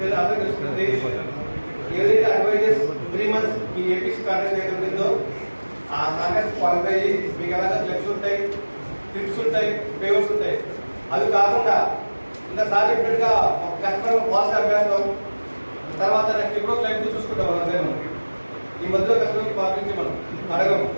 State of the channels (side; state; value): both; inverted; correlation -1.00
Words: అందరూ తెలుసుకుంటుంది ఏదైతే అడ్వైజెస్ 3 months ఈ ఏపీసీ కాంట్రాక్ట్ ఏదైతే ఉంటుందో ఆ కాంట్రాక్ట్ క్వాలిఫై అయ్యి మీకు ఎలాగ క్లబ్స్ ఉంటాయి, ట్రిప్స్ ఉంటాయి, పేవర్స్ ఉంటాయి. అవి కాకుండా ఇంకా సార్ చెప్పినట్టుగా కస్టమర్ పాలసీ అభ్యాసం తర్వాత నెక్స్ట్ ఎప్పుడో క్లైంట్ చూసుకుంటాం అంతే. మనం ఈ మధ్యలో కస్టమర్కి పాటించి మనం అడగం.